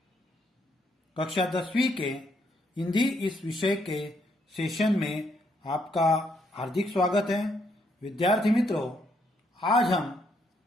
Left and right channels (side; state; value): both; normal; correlation 0.74